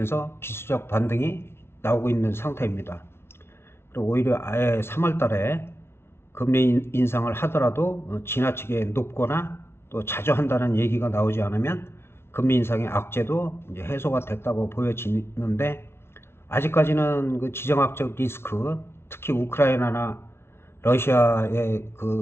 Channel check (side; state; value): right; late; 0.12 ms